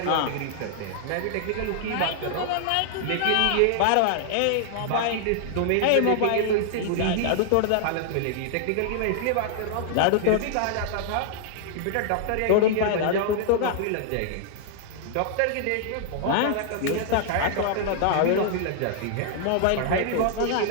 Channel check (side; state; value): both; different; correlation -0.01